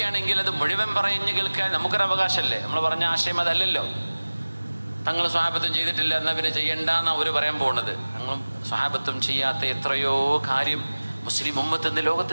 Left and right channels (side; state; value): both; inverted; correlation -1.00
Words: അത് മുഴുവൻ പറഞ്ഞു കേൾക്കാൻ നമുക്കൊരു അവകാശമല്ലേ. നമ്മൾ പറഞ്ഞ ആശയം അതല്ലല്ലോ. തങ്ങൾ സ്വഹാബത്തും ചെയ്തിട്ടില്ല എന്നാൽ പിന്നെ ചെയ്യണ്ടെന്നാണ് അവർ പറയാൻ പോകുന്നത്. തങ്ങളും സ്വഹാബത്തും ചെയ്യാത്ത എത്രയോ കാര്യം മുസ്ലിം ഉമ്മത്ത് ഇന്ന്